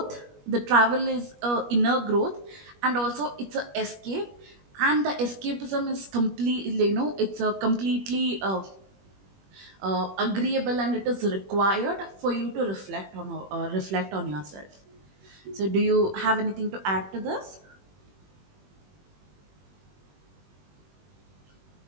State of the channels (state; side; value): late; left; 21 ms